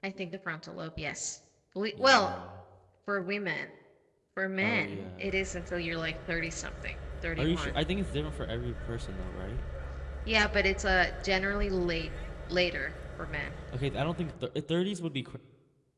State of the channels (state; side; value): identical; both; correlation 1.00